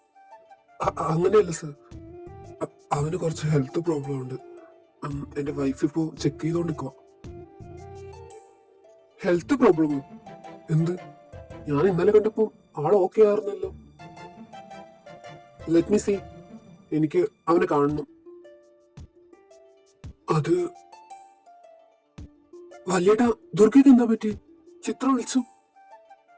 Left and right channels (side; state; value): both; identical; correlation 1.00